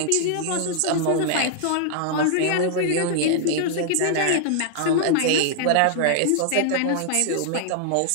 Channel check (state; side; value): different; both; correlation -0.01